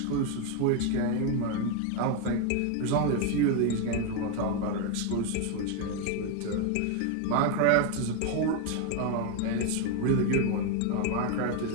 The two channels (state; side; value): different; both; correlation 0.01